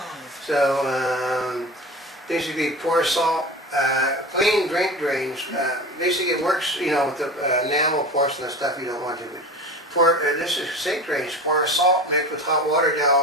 So, basically pour salt, clean drink drains. Basically it works, with the enamel porcelain stuff you don't want to. This is sink drains. Pour salt mixed with hot water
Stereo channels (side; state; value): both; normal; correlation 0.33